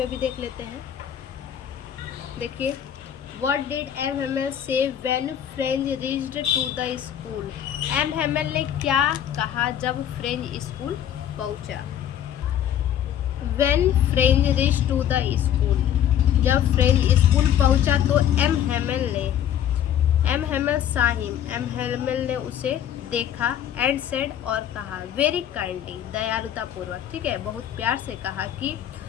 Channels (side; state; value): right; quieter; 10.2 dB